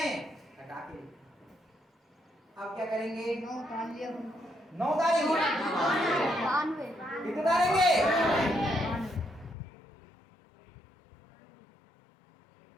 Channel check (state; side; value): drops out; right; at 9.6 s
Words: हैं, हटा के लिखेंगे। अब क्या करेंगे? 9 डाल लिया 9 डालेंगे। 92 कितने डालेंगे?